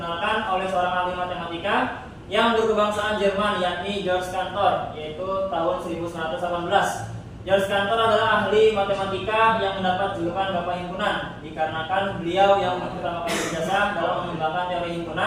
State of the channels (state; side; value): identical; both; correlation 1.00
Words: oleh seorang ahli matematika yang berkebangsaan Jerman, yakni Georg Cantor, yaitu tahun 1918. Georg Cantor adalah ahli matematika yang mendapat julukan Bapak Himpunan dikarenakan beliau yang pertama kali berjasa dalam mengembangkan teori